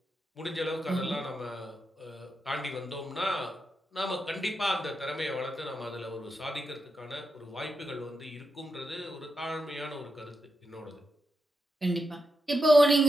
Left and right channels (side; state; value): both; normal; correlation 0.85